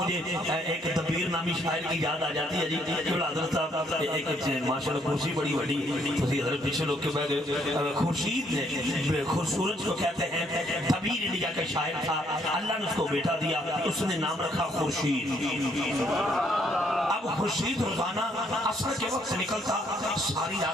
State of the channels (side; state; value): both; normal; correlation 0.69